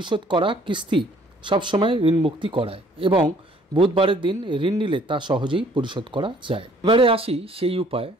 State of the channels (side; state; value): both; normal; correlation 0.59